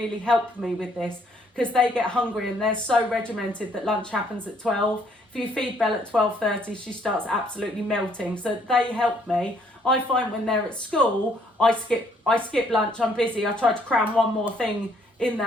help me with this, because they get hungry and they're so regimented that lunch happens at 12. If you feed Belle at 12:30, she starts absolutely melting. So they help me. I find when they're at school, I skip lunch, I'm busy, I try to cram one more thing in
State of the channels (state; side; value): normal; both; correlation 0.66